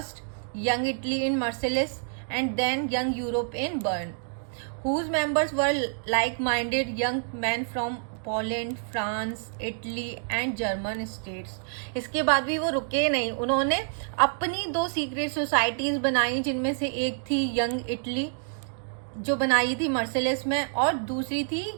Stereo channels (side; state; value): left; silent; digital silence